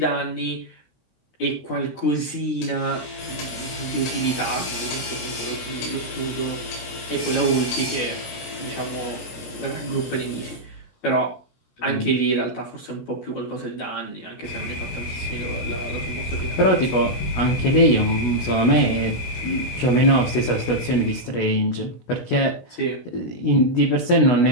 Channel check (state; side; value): late; right; 16 ms